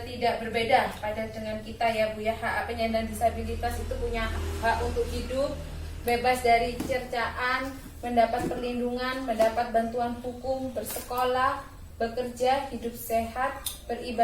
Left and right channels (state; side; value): identical; both; correlation 1.00